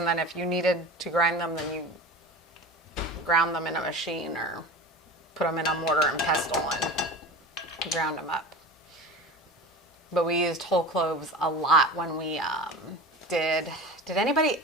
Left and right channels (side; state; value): both; normal; correlation 0.32